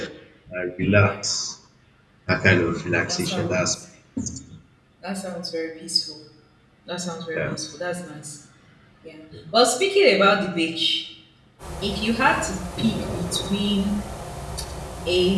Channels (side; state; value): both; identical; correlation 1.00